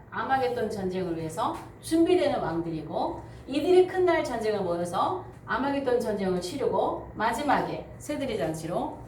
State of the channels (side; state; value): both; identical; correlation 1.00